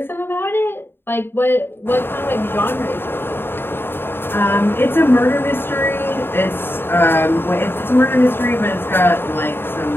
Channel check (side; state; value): right; late; 0.11 ms